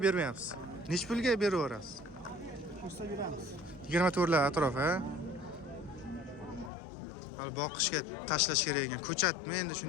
bermayapsiz. Nech pulga beraverasiz? 24 lar atrof, ha? Hali boqishga tashlash kerak ekan. Ko'chatmi endi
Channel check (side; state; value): right; drops out; at 6.7 s